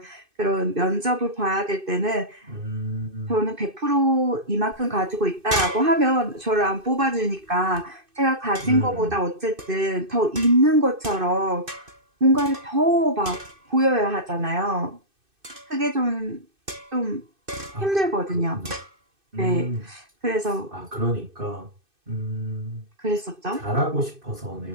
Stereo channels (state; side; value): late; left; 2.6 ms